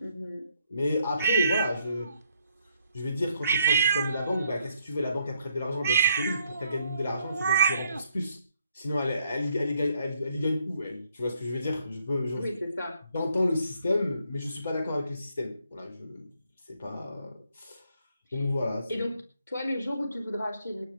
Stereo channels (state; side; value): inverted; both; correlation -0.72